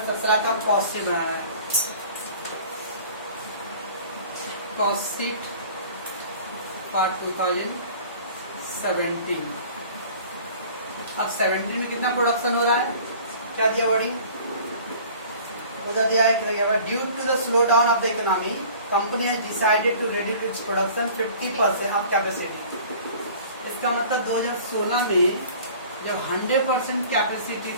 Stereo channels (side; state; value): both; inverted; correlation -0.47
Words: का कॉस्ट शीट बनाना है। Cost sheet for 2017। अब 17 में कितना प्रोडक्शन हो रहा है, क्या दिया वर्डिंग, उधर दिया है due to the slow down of the economy company has decided to reduce its production 50% of capacity. इसका मतलब 2016 में जब 100% कैपेसिटी